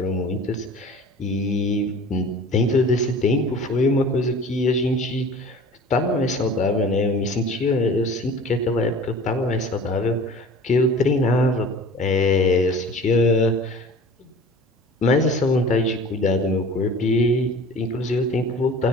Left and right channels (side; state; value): both; normal; correlation 0.42